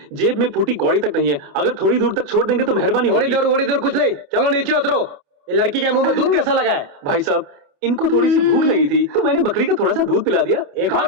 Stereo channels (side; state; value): left; late; 28 ms